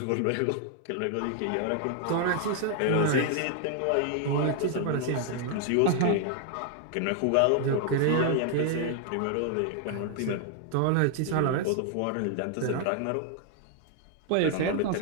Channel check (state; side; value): different; both; correlation 0.00